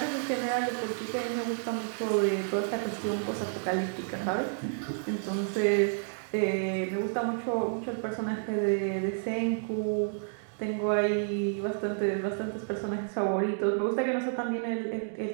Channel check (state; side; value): silent; left; digital silence